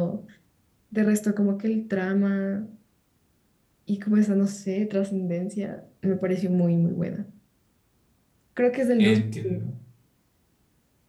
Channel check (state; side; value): identical; both; correlation 1.00